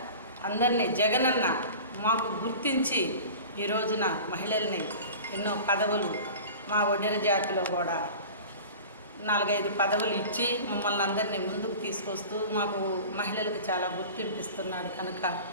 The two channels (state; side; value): inverted; both; correlation -0.38